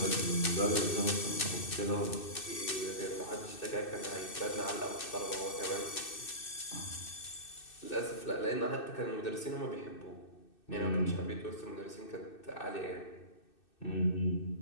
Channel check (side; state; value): right; late; 2.6 ms